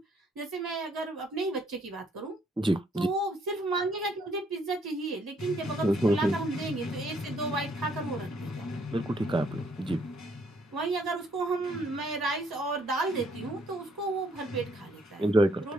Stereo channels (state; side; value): normal; both; correlation 0.68